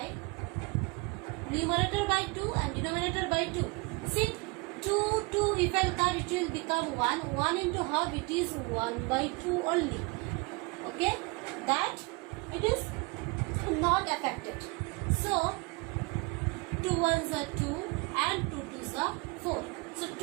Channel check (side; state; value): left; quieter; 27.3 dB